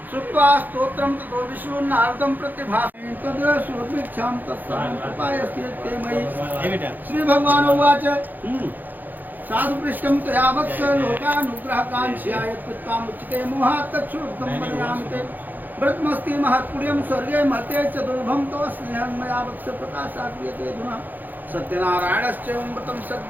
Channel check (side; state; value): left; late; 0.086 ms